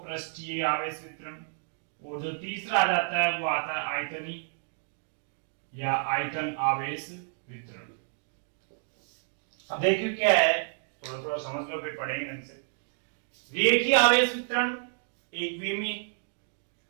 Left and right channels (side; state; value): left; silent; digital silence